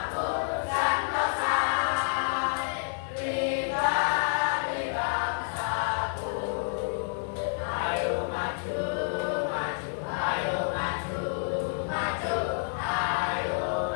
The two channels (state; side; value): silent; right; 59 dB below the other